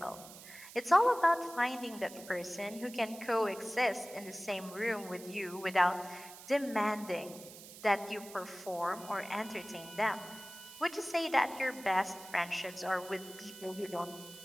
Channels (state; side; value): noise; right; hiss, 16 dB below the sound